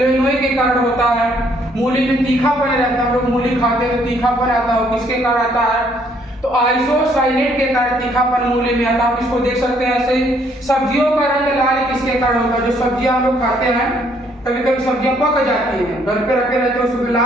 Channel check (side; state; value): both; normal; correlation 0.66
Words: के कारण होता है। मूली में तीखापन रहता है, हम लोग मूली खाते हैं तो तीखापन आता है, किसके कारण आता है, तो आइसोसाइनेट के कारण तीखापन मूली में आता है। आप इसको देख सकते हैं ऐसे ही। सब्जियों का रंग लाल किसके कारण होता है, जो सब्जियां हम लोग खाते हैं, कभी कभी सब्जियां पक जाती हैं, घर पे रखे रहते हैं, उसमें